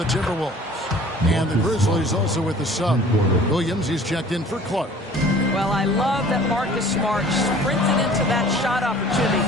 Timberwolves. And the Grizzlies also with the sub. Williams is checked in for Clark. Well, I love that Marcus Smart sprinted into that shot opportunity.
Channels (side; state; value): both; normal; correlation 0.49